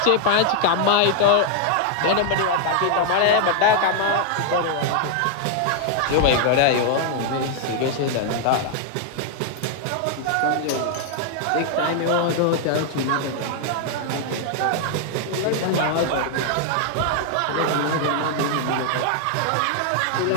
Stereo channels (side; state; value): both; different; correlation 0.00